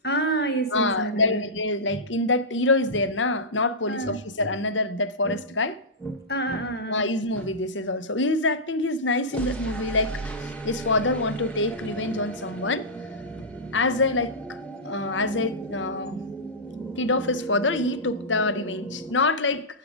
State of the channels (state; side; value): normal; both; correlation -0.14